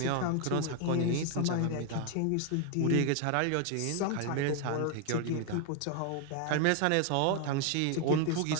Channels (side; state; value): both; different; correlation 0.00